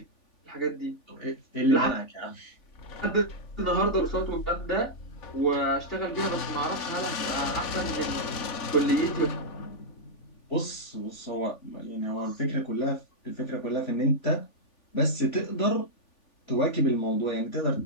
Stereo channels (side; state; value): right; late; 3.5 ms